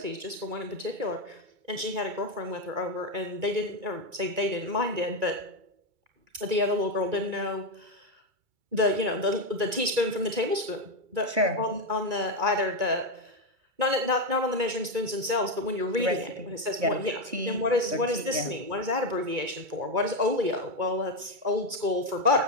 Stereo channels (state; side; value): late; left; 1.9 ms